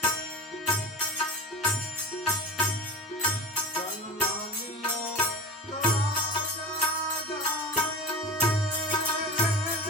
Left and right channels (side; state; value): both; normal; correlation 0.31